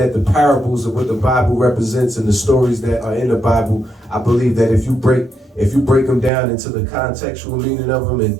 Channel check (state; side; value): drops out; left; at 6.3 s